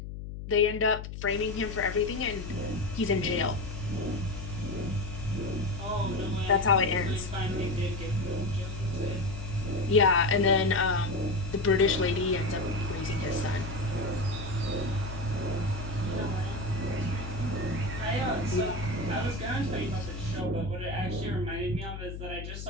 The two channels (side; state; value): left; noise; hum, 8 dB below the sound